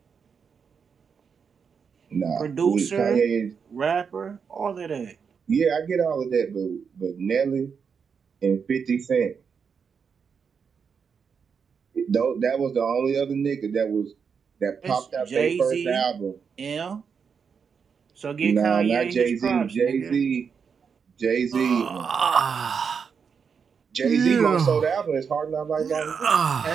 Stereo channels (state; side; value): quieter; left; 6.3 dB